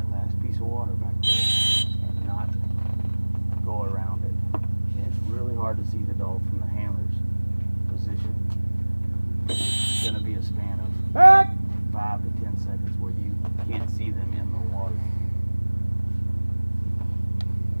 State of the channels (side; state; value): both; inverted; correlation -1.00